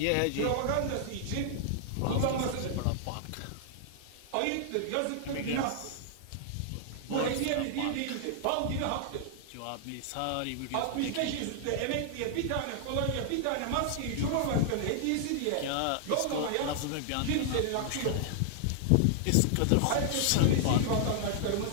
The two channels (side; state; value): both; different; correlation -0.01